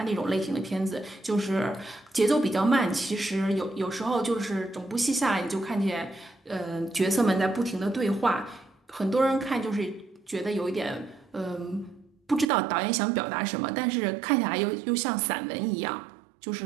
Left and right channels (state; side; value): drops out; left; at 12.5 s